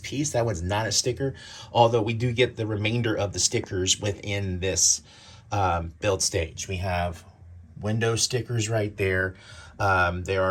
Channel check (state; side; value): identical; both; correlation 1.00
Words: That one's not a sticker, although we do get the remainder of the stickers within this build stage. We have window stickers right there. There